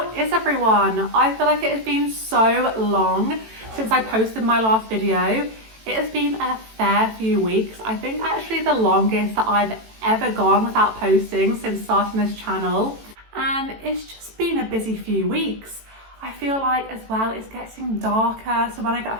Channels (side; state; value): left; late; 18 ms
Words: is everyone? I feel like it has been so long since I posted my last video. It has been a fair few weeks. I think actually the longest that I've ever gone without posting since starting this channel. And it's just been a busy few weeks. I feel like as well it's getting darker, so when I get